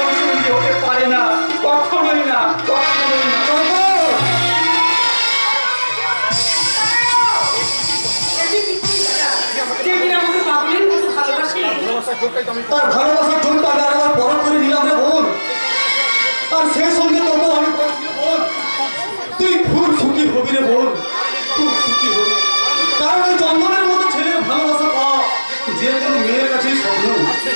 সঙ্গী হতে পারে না, কখনোই না, কখনোই না। যে কিনা আমাকে পাগলের মতো ভালোবাসে। তার ভালোবাসার জন্য আমি আরেকবার পরখ করে নিলাম রে বোন, আর সেই সঙ্গে তবু আমি বলছি রে বোন, তুই খুব সুখী হবি রে বোন, খুব সুখী হবি, কারণ ওই চন্দনের মতো ছেলের ভালোবাসা পাওয়া যে কোনো মেয়ের কাছেই স্বপ্ন,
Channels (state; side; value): inverted; both; correlation -1.00